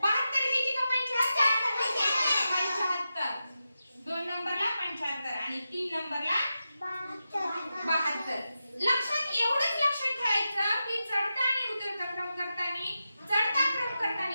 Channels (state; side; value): inverted; both; correlation -0.90